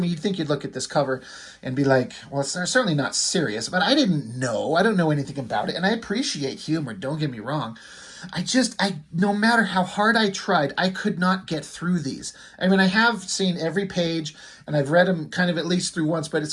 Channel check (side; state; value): both; identical; correlation 1.00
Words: you'd think you'd look at this cover and be like, well, it's certainly not serious, but I didn't know. I don't know anything about it, and I appreciate humor, don't get me wrong. No matter how hard I tried, I could not get through these. I mean, I have seen every page and I've read them kind of at least through once, but